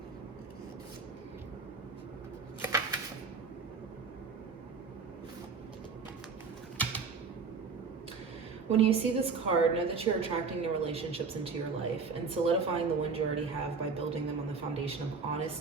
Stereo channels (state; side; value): quieter; left; 5.0 dB